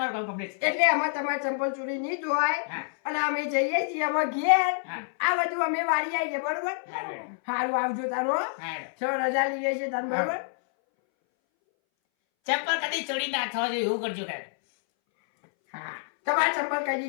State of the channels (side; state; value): right; silent; 60 dB below the other